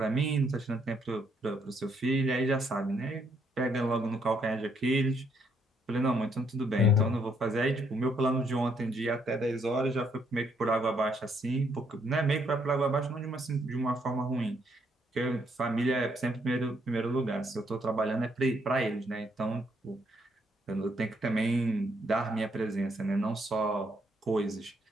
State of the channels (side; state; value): both; normal; correlation 0.72